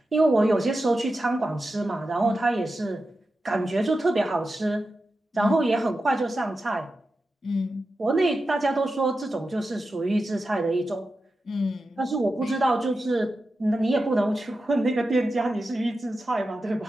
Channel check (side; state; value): both; normal; correlation 0.91